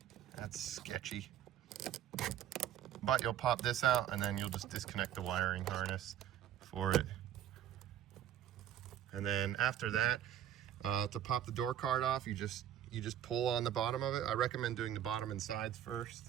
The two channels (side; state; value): left; quieter; 10.8 dB